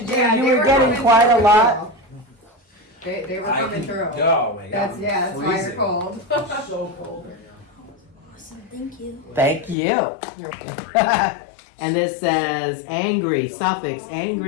do. You were getting quite a lot. They were I coming can- through. Oh my god. That's why you're Freezing. cold. So cold right now. Awesome, thank you. Thank you. And this says angry, suffix,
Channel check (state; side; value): drops out; right; at 9.8 s